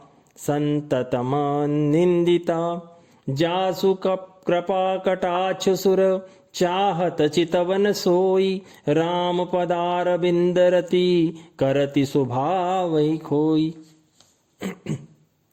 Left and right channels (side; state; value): both; identical; correlation 1.00